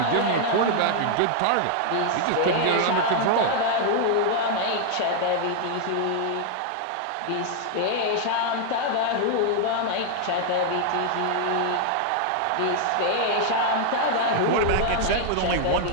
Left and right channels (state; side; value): different; both; correlation 0.00